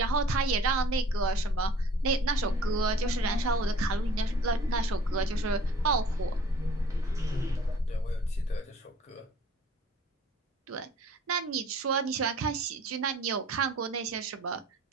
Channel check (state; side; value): normal; both; correlation 0.50